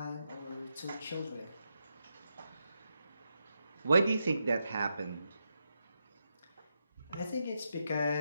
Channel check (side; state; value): both; inverted; correlation -0.85